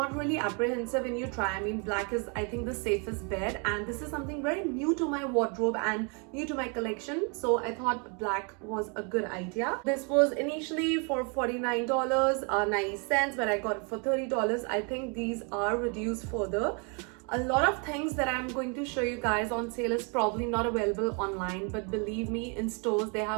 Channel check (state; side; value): quieter; left; 35.7 dB